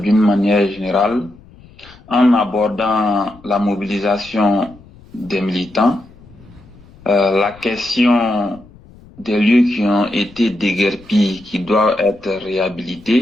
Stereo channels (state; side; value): noise; left; rumble, 24 dB below the sound